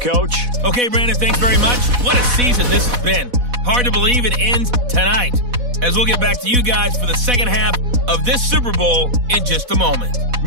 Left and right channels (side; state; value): left; late; 4.1 ms